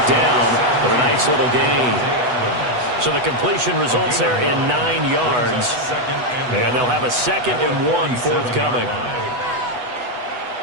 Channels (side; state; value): left; late; 8.1 ms